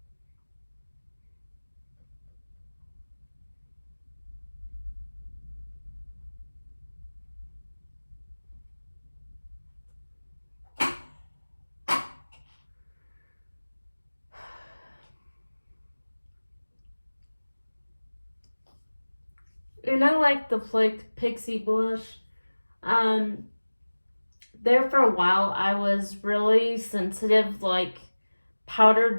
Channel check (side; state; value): both; inverted; correlation -1.00